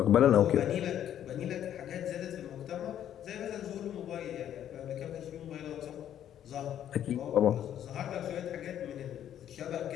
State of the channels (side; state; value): right; quieter; 10.5 dB